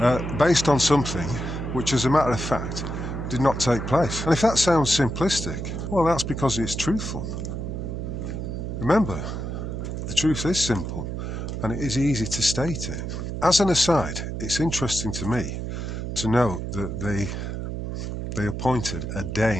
based on something which, as a matter of fact, did not take place. And if that sounds simplistic, well, that's because it's truthful. Remember, the truth is simple, and it is easy to state it. As an aside, it's interesting to me to note that they appointed a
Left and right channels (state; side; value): noise; right; hum, 4 dB below the sound